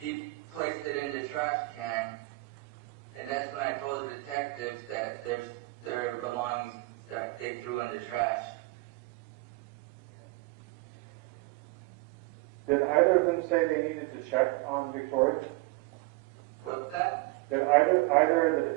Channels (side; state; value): left; quieter; 23.2 dB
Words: placed it in the trash can. And that's when I told the detectives that there's their belongings that they threw in the trash. Did either of them say they needed to check on Victoria? What's that? Did either the